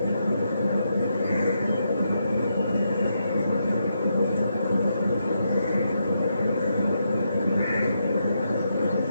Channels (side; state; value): both; inverted; correlation -0.81